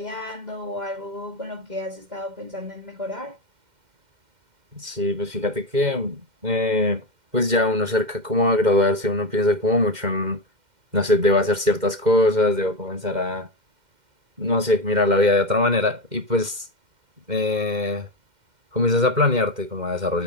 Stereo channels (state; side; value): late; left; 2.1 ms